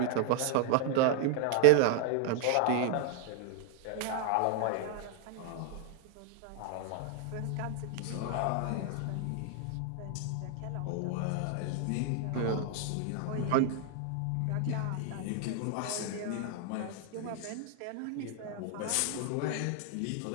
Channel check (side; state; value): both; different; correlation 0.00